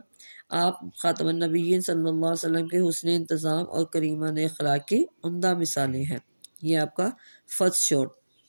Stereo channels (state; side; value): inverted; both; correlation -1.00